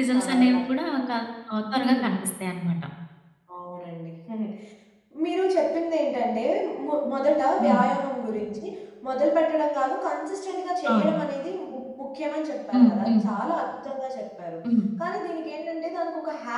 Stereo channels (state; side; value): identical; both; correlation 1.00